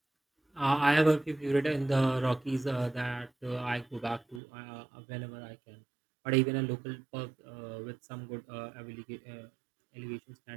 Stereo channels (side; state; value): left; drops out; at 4.4 s